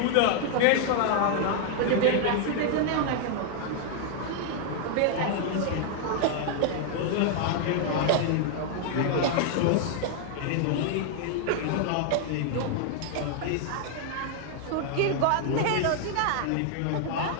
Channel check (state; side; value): different; both; correlation 0.00